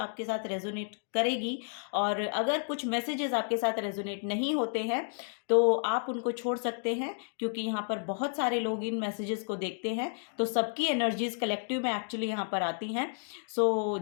साथ रेजोनेट करेगी। और अगर कुछ मैसेजेस आपके साथ रेजोनेट नहीं होते हैं तो आप उनको छोड़ सकते हैं, क्योंकि यहाँ पर बहुत सारे लोग इन मैसेजेस को देखते हैं तो सबकी एनर्जीज कलेक्टिव में एक्चुअली यहाँ पर आती हैं। सो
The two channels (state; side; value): silent; right; digital silence